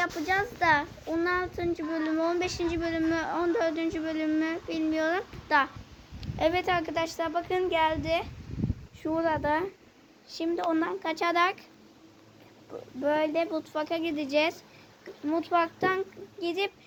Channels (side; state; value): both; identical; correlation 1.00